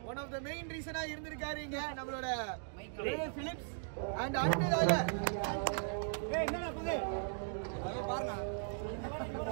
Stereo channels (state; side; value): silent; left; digital silence